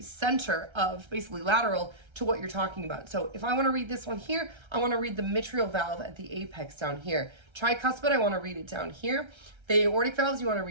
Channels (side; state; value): left; late; 1.3 ms